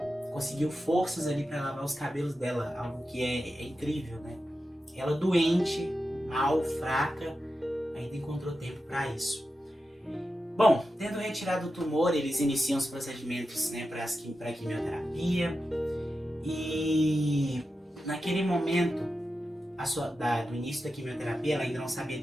Conseguiu forças ali para lavar os cabelos dela, algo que é incrível, né? Ela doente, mal, fraca, ainda encontrou tempo para isso. Bom, tendo retirado o tumor, eles iniciam os procedimentos, né, para a quimioterapia, e naquele momento do início da quimioterapia, ela ainda não sabia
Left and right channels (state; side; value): normal; both; correlation 0.90